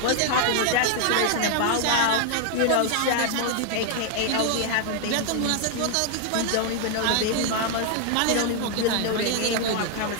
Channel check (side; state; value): both; different; correlation 0.00